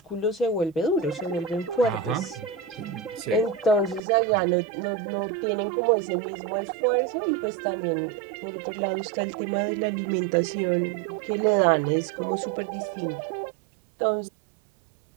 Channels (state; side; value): drops out; left; at 4.0 s